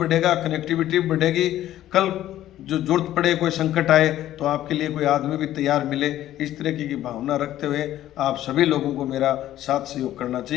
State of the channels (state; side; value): quieter; right; 13.2 dB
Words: कनेक्टिविटी भी बढ़ेगी। कल जो जरूरत पड़े, कोई संकट आए, तो आपके लिए कोई आदमी भी तैयार मिले। इस तरीके की भावना रखते हुए आप सभी लोगों को मेरा साथ सहयोग करना